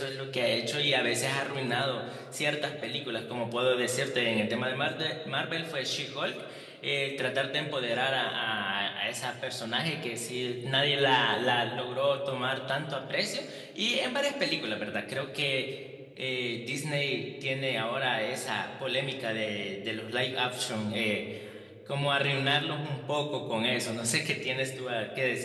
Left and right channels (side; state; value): both; identical; correlation 1.00